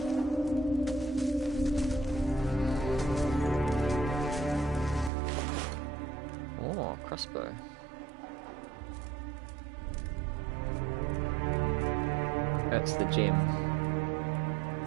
Crossbow. That's the gem.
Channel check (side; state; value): left; drops out; at 5.1 s